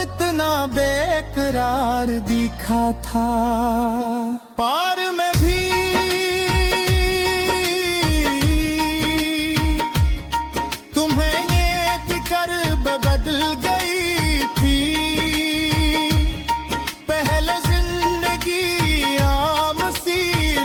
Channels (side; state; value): both; identical; correlation 1.00